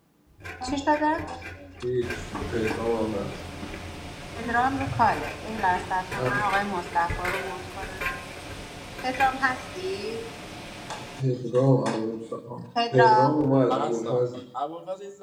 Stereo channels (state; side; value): identical; both; correlation 1.00